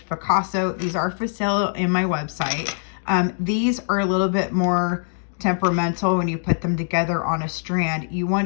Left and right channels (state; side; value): silent; right; digital silence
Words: Picasso. These are for sale in my website. These are a little bit more temperamental when you put them together on a strand. You